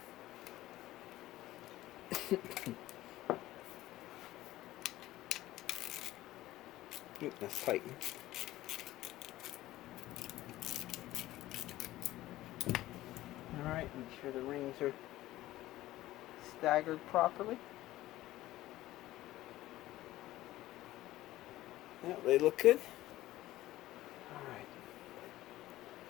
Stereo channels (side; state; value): right; quieter; 15.9 dB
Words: Oop, that's tight. Alright, make sure the rings are staggered properly. Yeah, they look good. Alright.